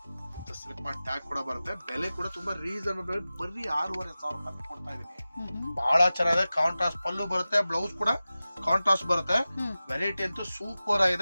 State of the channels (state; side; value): inverted; both; correlation -0.96